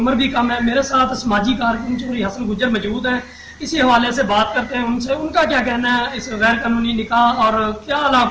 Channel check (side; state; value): both; identical; correlation 1.00